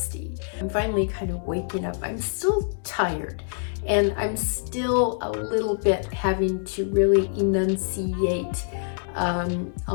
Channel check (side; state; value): right; silent; 61 dB below the other